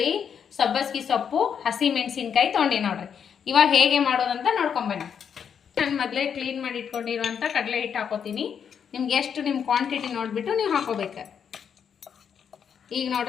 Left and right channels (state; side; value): quieter; right; 7.6 dB